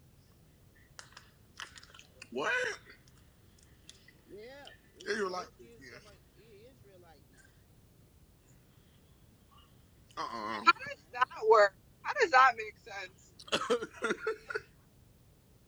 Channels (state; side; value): identical; both; correlation 1.00